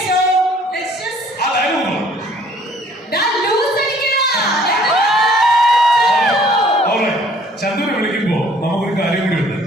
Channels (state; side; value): normal; both; correlation 0.57